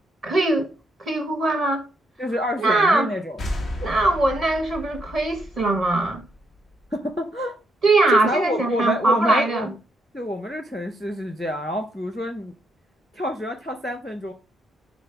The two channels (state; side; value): normal; both; correlation 0.77